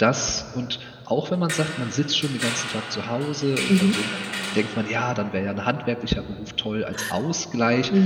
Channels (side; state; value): both; identical; correlation 1.00